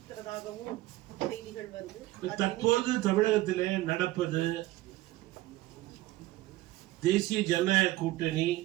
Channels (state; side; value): quieter; left; 17.2 dB